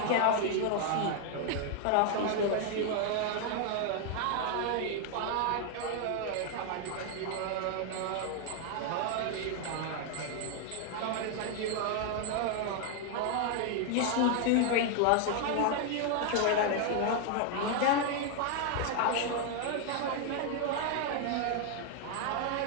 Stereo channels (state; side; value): different; both; correlation 0.00